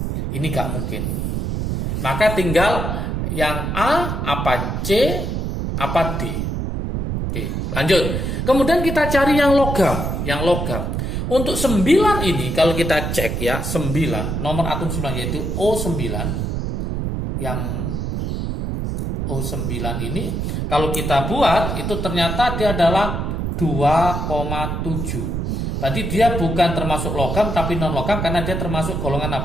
Ini nggak mungkin. Maka tinggal yang A, apa C, apa D. Oke, lanjut. Kemudian kita cari yang logam. Yang logam. Untuk 9 ini kalau kita cek ya, 9, nomor atom 9 yaitu O9. Yang O9 ini kalau kita buat itu ternyata dia adalah 2,7. Berarti dia bukan termasuk logam tapi non logam karena dia termasuk golongan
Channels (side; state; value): right; noise; rumble, 2 dB below the sound